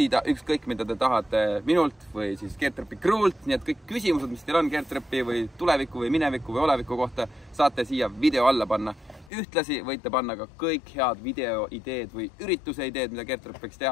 ükskõik, mida te tahate minult või siis Getropi crew'lt. Nii et kõik küsimused, mis teil on Getropi või tuleviku või mineviku või oleviku kohta, saate siia video alla panna. Ühtlasi võite panna ka kõik head videoideed või ürituse ideed, mida Getrop võiks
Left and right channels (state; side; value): drops out; right; at 9.3 s